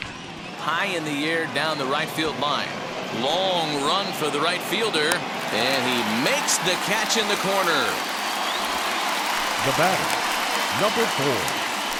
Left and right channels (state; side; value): identical; both; correlation 1.00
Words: High in the air down the right field line. Long run for the right fielder, and he makes the catch in the corner. The batter, number 4.